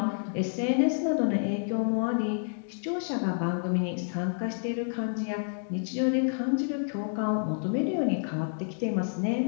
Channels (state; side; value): silent; right; digital silence